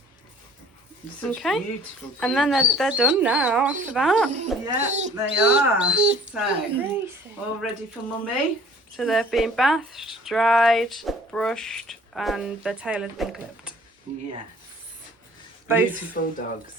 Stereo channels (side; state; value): both; normal; correlation 0.52